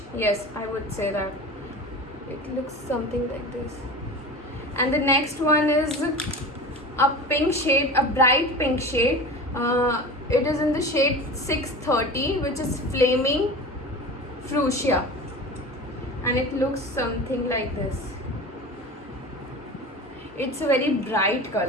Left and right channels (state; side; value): normal; both; correlation 0.33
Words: Yes, I would say that. It looks something like this. And the next one is a pink shade, a bright pink shade. It is in the shade 630, which is Flaming Fuchsia, and it looks something like this. It's a very bright